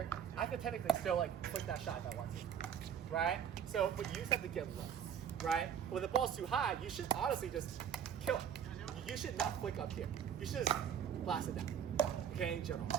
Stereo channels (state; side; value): quieter; left; 8.6 dB